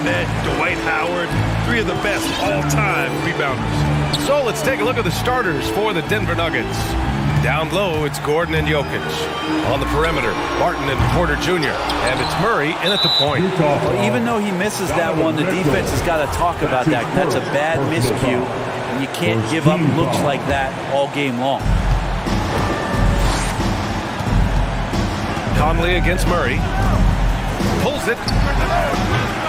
Dwight Howard, three of the best all-time rebounders. So let's take a look at the starters for the Denver Nuggets. Down low, it's Gordon and Jokic. On the perimeter, Barton and Porter Jr. And it's Murray in at the point. Well, even though he misses that one, the defense has got to talk about that. That's a bad miscue. And you can't give up looks like that all game long. Conley against Murray. Pulls it.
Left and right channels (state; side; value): identical; both; correlation 1.00